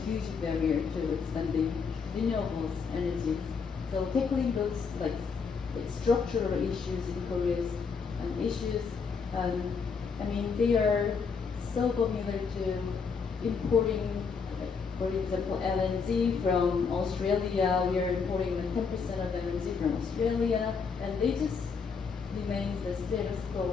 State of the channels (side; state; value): right; quieter; 5.5 dB